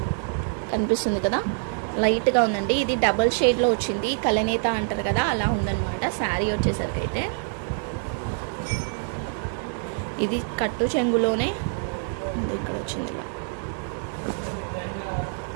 కనిపిస్తుంది కదా, లైట్గా ఉందండి. ఇది డబల్ షేడ్లో వచ్చింది. కలనేత అంటారు కదా, అలా ఉందన్నమాట. శారీ వచ్చేసరికి అయితే ఇది కట్టు చెంగులోనే ఇక్కడ వచ్చింది ఇలా.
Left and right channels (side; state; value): left; silent; 61 dB below the other